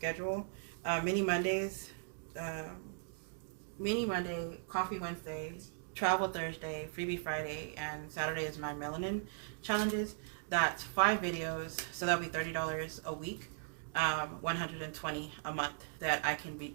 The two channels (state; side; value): silent; left; digital silence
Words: mini Mondays, Mini Monday, Coffee Wednesday, Travel Thursday, Freebie Friday, and Saturday is my melanin challenges. That's 5 videos, so that'll be $30 a week, 120 a month that I